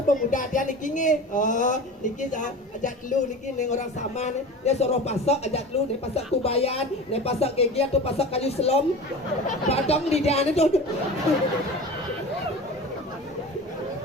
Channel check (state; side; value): normal; both; correlation 0.34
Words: pemuda dia niki niki ajak lu niki neng orang sama nih dia suruh pasok ajak lu nih pasok kubayan nih pasok gigi atau pasok kayu selom padang di dia itu